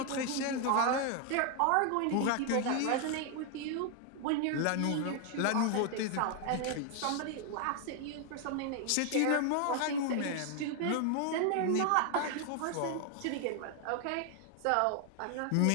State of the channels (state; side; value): different; both; correlation 0.00